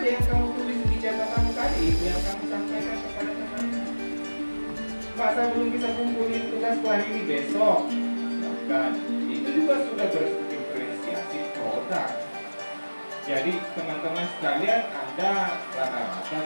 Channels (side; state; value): both; inverted; correlation -1.00